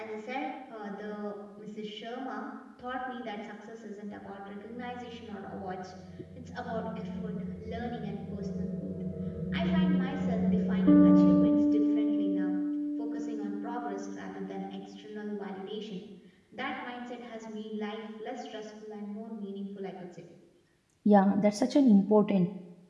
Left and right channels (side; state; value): both; identical; correlation 1.00